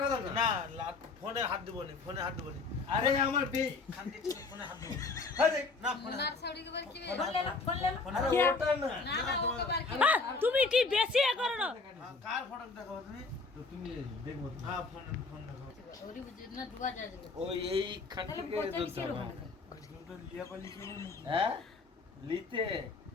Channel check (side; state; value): right; quieter; 4.0 dB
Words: কথা না না ফোনে হাত দেবো নি, ফোনে হাত দেবো নি। আরে আমার বে খানকে ছিল, ফোনে হাত দেবো নি। আরে না ফোনে ওনার হাত- ছড়ি কে কি ফোন লে ফোন লে। ফোনে আরে হাত- ওটা না না না ওকে বার কি। তুমি কি বেশি এ করো না? হ্যাঁ, কার ফটো দেখাবো তুমি? তো তুমি দেখো তো। হ্যাঁ ফোন দেখাবো। ওরি বুঝি না ডুবা যায় যাবে। ওই এই তাহলে খানটিকে পয়সা ধরতে কিসের হবে। ওখানে? আজকে তো লিয়া পালি ছিল নাকি? হ্যাঁ লিতে